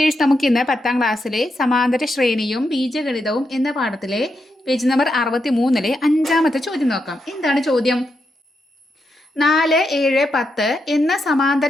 നമുക്ക് ഇന്ന് 10ാം ക്ലാസ്സിലെ സമാന്തര ശ്രേണിയും ബീജഗണിതവും എന്ന പാഠത്തിലെ പേജ് നമ്പർ 63-ലെ 5ാമത്തെ ചോദ്യം നോക്കാം. എന്താണ് ചോദ്യം? 4, 7, 10 എന്ന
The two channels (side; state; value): both; normal; correlation 0.84